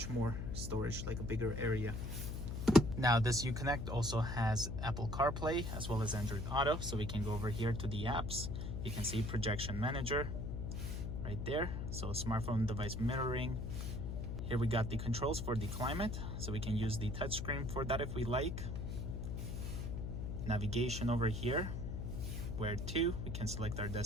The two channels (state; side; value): noise; left; hum, 4 dB below the sound